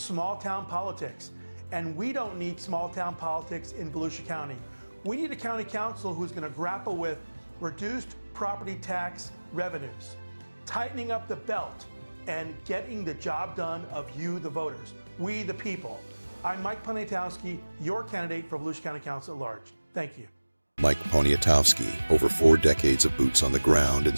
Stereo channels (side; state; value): both; inverted; correlation -1.00